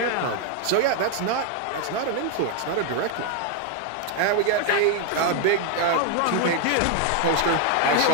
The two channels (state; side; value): different; both; correlation 0.01